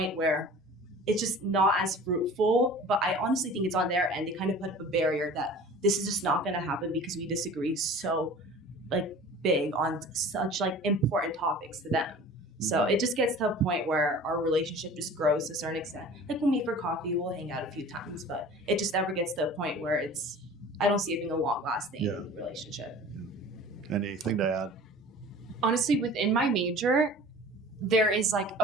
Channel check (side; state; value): both; normal; correlation 0.42